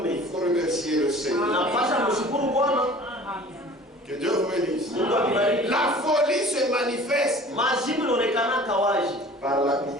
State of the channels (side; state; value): both; normal; correlation 0.46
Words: il faut remercier le Seigneur. unapasha mshukuru Bwana. Que Dieu vous bénisse. Mungu akubariki. La folie se manifeste Majibu inaonekana kawaji par